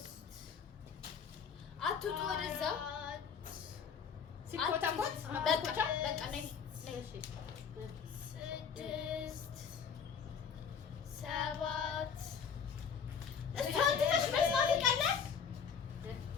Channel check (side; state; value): right; quieter; 6.8 dB